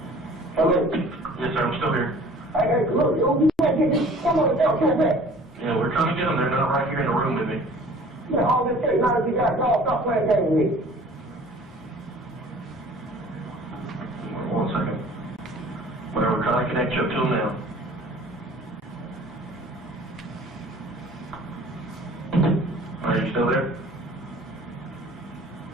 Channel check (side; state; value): both; normal; correlation 0.49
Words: Yes, sir, I'm still here. Hey, look, you can't get this. Come on, come back. Yeah, we're trying to get them. They're not right here in the room with me. Yeah, all this case, now that you got called, stop playing games with me. 1 second. Well, we're trying to connect you up to them now. Are you still there?